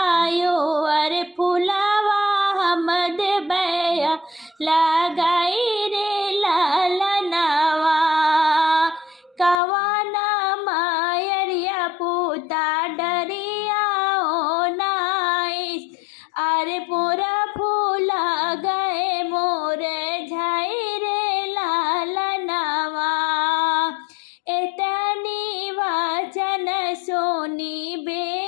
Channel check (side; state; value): right; drops out; at 9.6 s